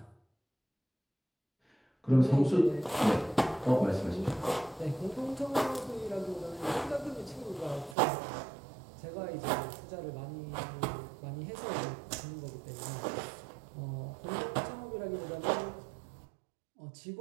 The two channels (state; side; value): drops out; left; at 8.0 s